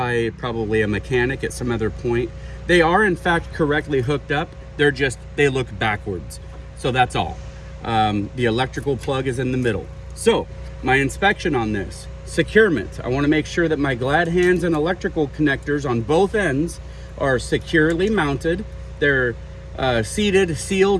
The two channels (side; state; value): both; identical; correlation 1.00